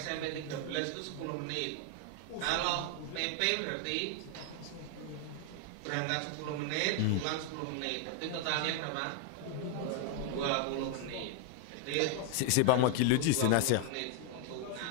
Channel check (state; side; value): different; both; correlation 0.00